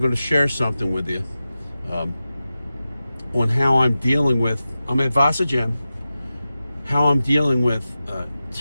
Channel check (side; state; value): both; inverted; correlation -0.94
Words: going to share something with you on how I'm dealing with, I'm at Vasa Gym, how I'm dealing with